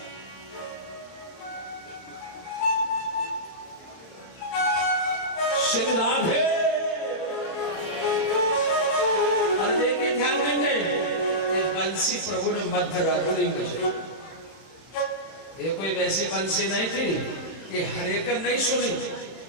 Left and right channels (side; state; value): right; late; 31 ms